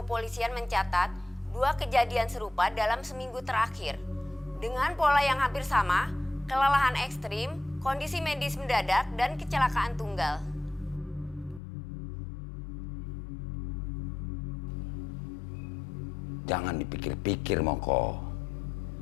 mencatat 2 kejadian serupa dalam seminggu terakhir. Dengan pola yang hampir sama, kelelahan ekstrim, kondisi medis mendadak, dan kecelakaan tunggal. jangan dipikir-pikir, Moko.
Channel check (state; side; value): drops out; right; at 11.6 s